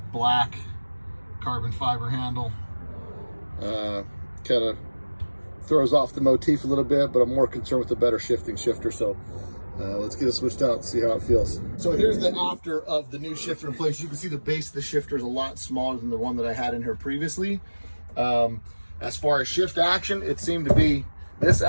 black carbon fiber handle, kind of throws off the motif a little bit, but I'm more concerned with the better shifting shifter. So let's get it switched out and see how it feels. So here's the after of the new shifter in place. You can see the base of the shifter is a lot smaller than the one that I had in here previously. As far as shift action, this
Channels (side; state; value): both; inverted; correlation -1.00